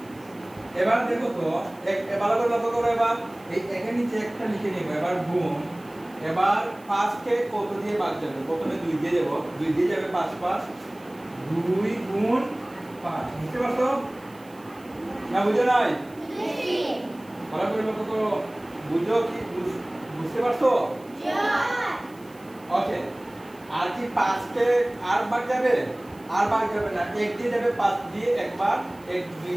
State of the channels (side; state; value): right; noise; hiss, 27 dB below the sound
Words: এবার দেখো তো এবার লক্ষ্য করো, এবার এই একের নিচে একটা লিখে নিব, এবার গুণ। এবার 5 কে কত দিয়ে ভাগ যাবে? প্রথমে 2 দিয়ে দেব, 2 দিয়ে যাবে 5 5, 2 গুণ 5, বুঝতে পারছো না? বুঝো নাই? বুঝছি। ভালো করে লক্ষ্য করো, বুঝো কি? বুঝতে পারছো? ওকে। আর কি 5 কে আর ভাগ যাবে? আর ভাগ যাবে না, 1 দিয়ে যাবে, 5 দিয়ে একবার, 1 2